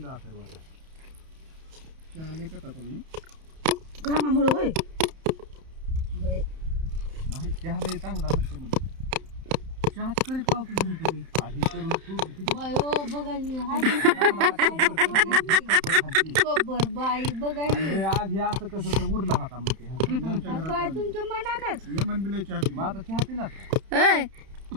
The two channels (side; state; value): left; late; 31 ms